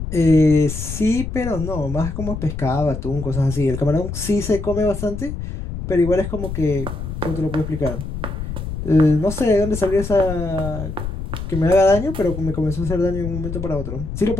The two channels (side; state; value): left; noise; rumble, 6 dB below the sound